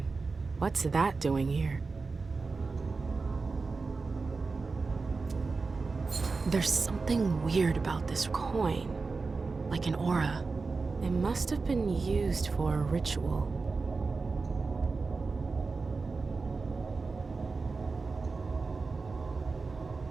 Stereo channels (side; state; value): left; quieter; 4.2 dB